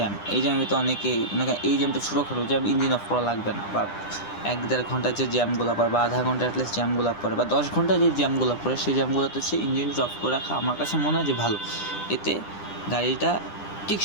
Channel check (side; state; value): right; late; 9.9 ms